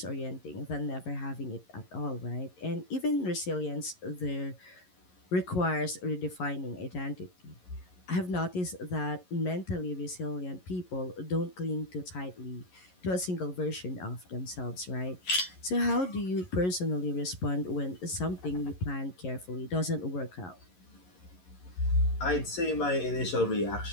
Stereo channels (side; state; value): right; late; 11 ms